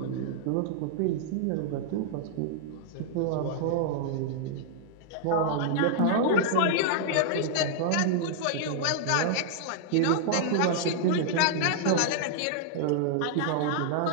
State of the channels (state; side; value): different; both; correlation -0.01